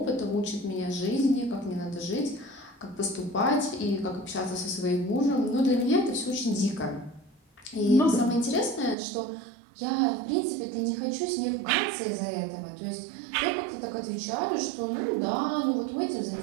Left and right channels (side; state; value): left; drops out; at 9.0 s